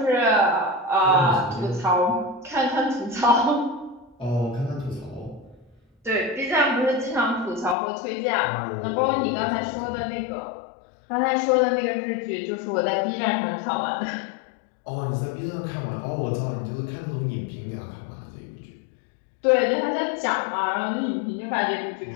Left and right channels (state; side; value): drops out; right; at 7.8 s